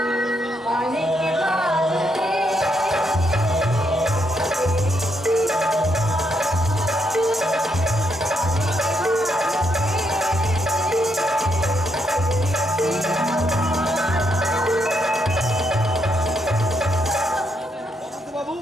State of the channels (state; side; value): normal; both; correlation 0.78